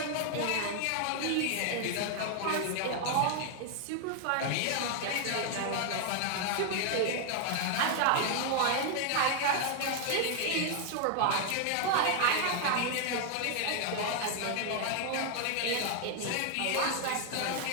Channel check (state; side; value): different; both; correlation 0.00